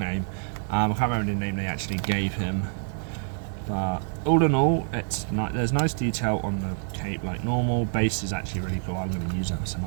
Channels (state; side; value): silent; left; digital silence